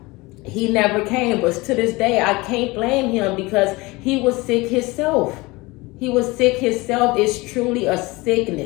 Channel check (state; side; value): quieter; right; 22.8 dB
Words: he never came. But to this day, I can't blame him because he was sick himself. It's truly a